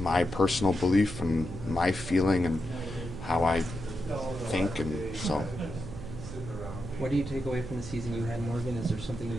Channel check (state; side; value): noise; right; hum, 11 dB below the sound